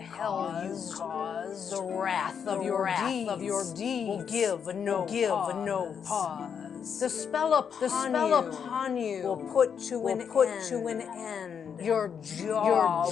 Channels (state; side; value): quieter; right; 7.3 dB